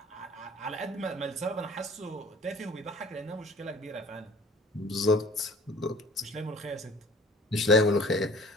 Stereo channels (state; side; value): normal; both; correlation 0.49